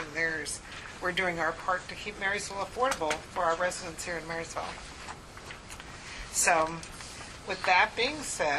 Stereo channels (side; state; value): both; identical; correlation 1.00